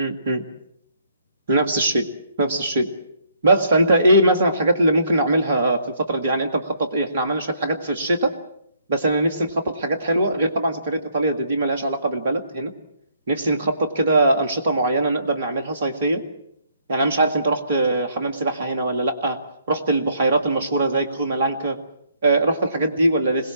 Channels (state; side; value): inverted; both; correlation -0.68